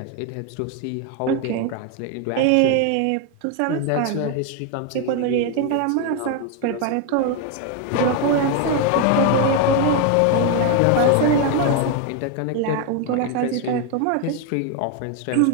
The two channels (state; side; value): different; both; correlation 0.01